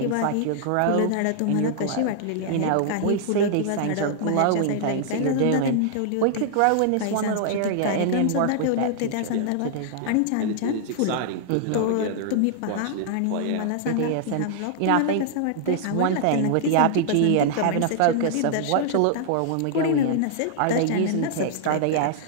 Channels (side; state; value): both; different; correlation -0.01